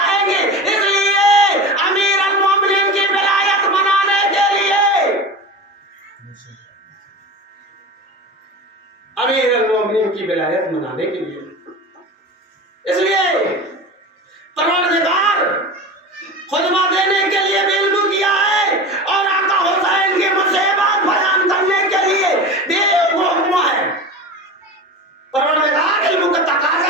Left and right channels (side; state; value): both; normal; correlation 0.30